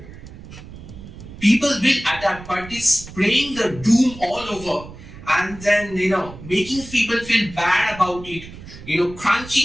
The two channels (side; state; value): right; noise; rumble, 15 dB below the sound